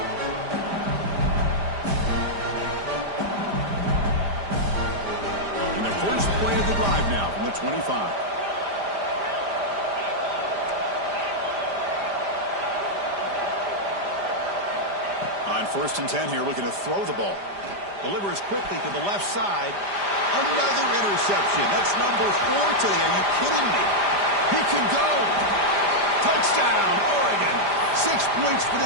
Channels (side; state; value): left; late; 5.0 ms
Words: And the first play of the drive now from the 25. On 1st and 10 here, looking to throw the ball. Delivers quickly to the left side. Another interception. That's number 4 today. Are you kidding me? He can go. Touchdown, Oregon. 6 points for